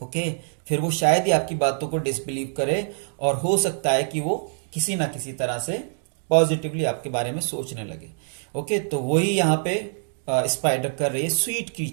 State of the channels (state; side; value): silent; left; digital silence